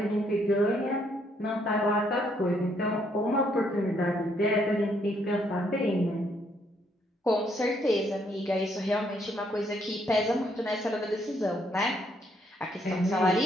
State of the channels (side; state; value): both; normal; correlation 0.71